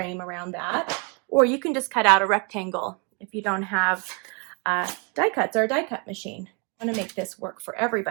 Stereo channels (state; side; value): quieter; left; 33.8 dB